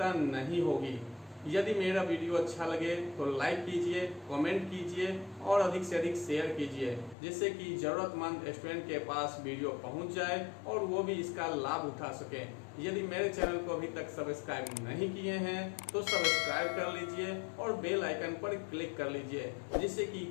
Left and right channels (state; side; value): drops out; right; at 7.2 s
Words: नहीं होगी। यदि मेरा वीडियो अच्छा लगे तो लाइक कीजिए, कमेंट कीजिए और अधिक से अधिक शेयर कीजिए, जिससे कि ज़रूरतमंद स्टूडेंट के पास वीडियो पहुंच जाए और वो भी इसका लाभ उठा सकें। यदि मेरे चैनल को अभी तक सब्सक्राइब नहीं किए हैं तो सब्सक्राइब कर लीजिए और बेल आइकन पर क्लिक कर लीजिए, जिससे कि